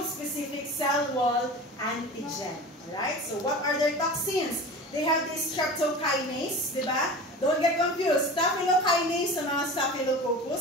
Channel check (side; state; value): both; normal; correlation 0.34